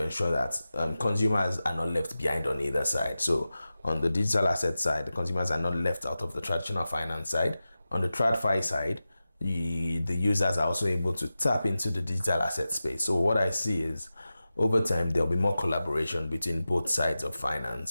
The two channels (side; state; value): both; inverted; correlation -0.94